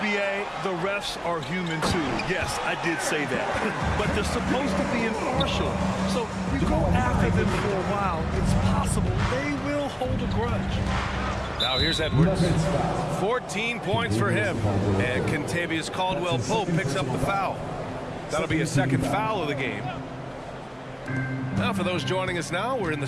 The refs are human, too. Yes, I did say that. But they're supposed to be impartial. So you go after them for a while, it's possible they will hold a grudge. Now here's Edwards. 14 points for him. And Kentavious Caldwell-Pope picks up the foul. That'll be a second foul of the game. Now for those joining us now, we're in the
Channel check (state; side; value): identical; both; correlation 1.00